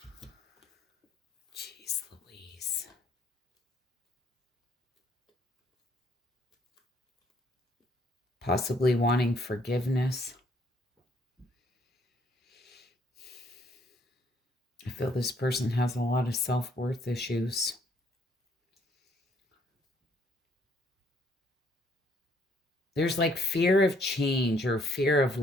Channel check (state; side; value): normal; both; correlation 0.66